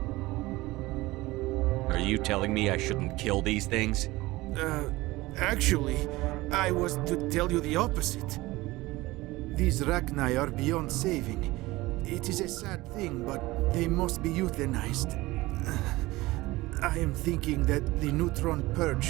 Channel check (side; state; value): left; quieter; 19.7 dB